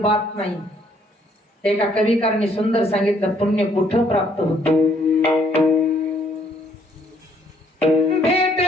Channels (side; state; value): both; normal; correlation 0.66